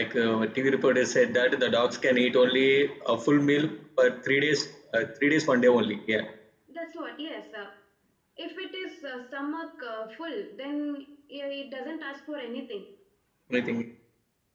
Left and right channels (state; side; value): identical; both; correlation 1.00